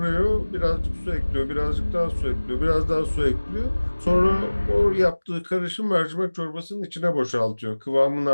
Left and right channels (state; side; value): inverted; both; correlation -1.00